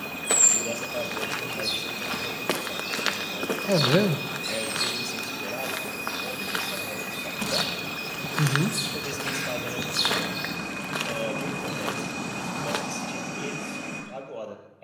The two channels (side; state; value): both; identical; correlation 1.00